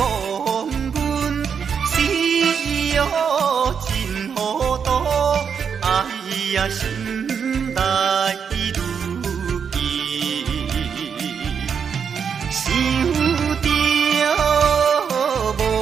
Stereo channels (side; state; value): left; quieter; 6.9 dB